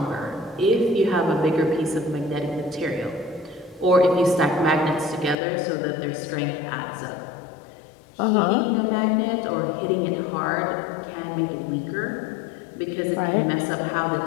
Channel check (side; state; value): right; drops out; at 5.4 s